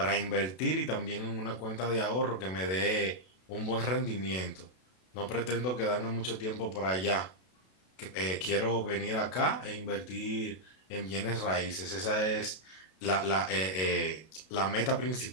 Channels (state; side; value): late; right; 32 ms